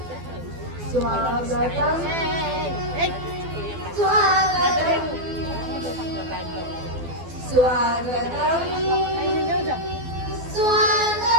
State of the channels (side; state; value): left; late; 12 ms